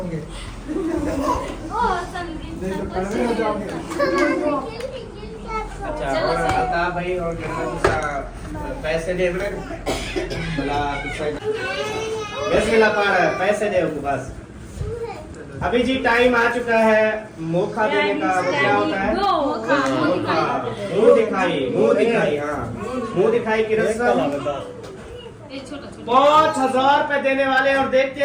देखो कड़वे हो जाओगे। अच्छा और बता भाई, और पैसे दे बोला बस मिला पा रहा है, पैसे दे उनको बस। अभी जी टाइम आ चुका है मोखा देने का। वो क्या होता है, मोखा, मुंह दिखाई, मुंह दिखाई। हाँ मुंह दिखाई की रस्म 5,000 रुपए देने वाले, और देखते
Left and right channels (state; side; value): identical; both; correlation 1.00